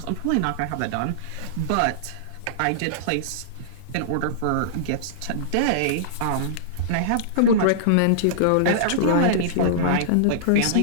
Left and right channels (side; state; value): both; different; correlation -0.02